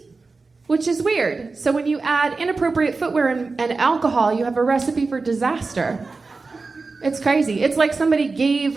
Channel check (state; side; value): quieter; left; 4.0 dB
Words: which is weird. So when you add inappropriate footwear and alcohol, you have a recipe for disaster. It's crazy. It's like somebody gave